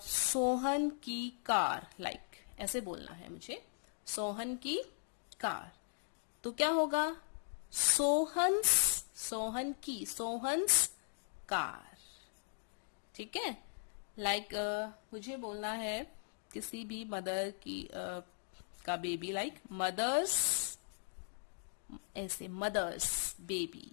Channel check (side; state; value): right; silent; digital silence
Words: की कार, लाइक ऐसे बोलना है मुझे, सोहन की कार, तो क्या होगा? सोहन्स कार, ठीक है। लाइक मुझे बोलना है किसी भी मदर की का बेबी, लाइक मदर्स, ऐसे मदर्स बेबी,